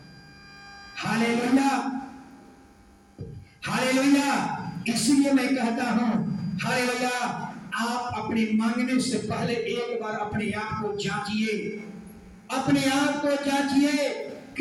Hallelujah, hallelujah. इसलिए मैं कहता हूं, हालेलुया, आप अपने मांगने से पहले एक बार अपने आप को जांचिए, अपने आप को जांचिए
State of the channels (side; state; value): both; identical; correlation 1.00